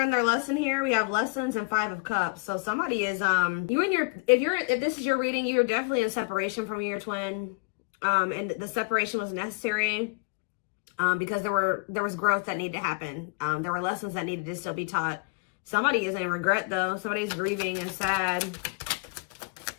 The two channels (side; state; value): right; quieter; 33.4 dB